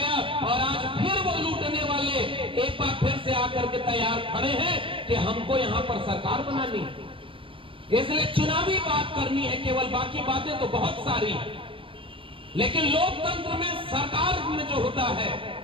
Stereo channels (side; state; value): left; late; 0.25 ms